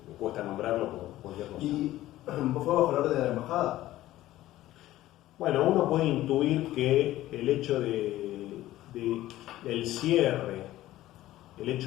cuesta nombrarlo por cualquier cosa. ¿Y fue bajo la orden de la embajada? Bueno, uno puede intuir que el hecho del cierre de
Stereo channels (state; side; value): quieter; right; 15.1 dB